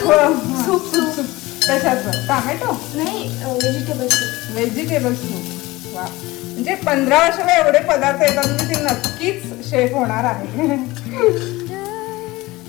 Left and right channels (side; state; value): right; quieter; 20.0 dB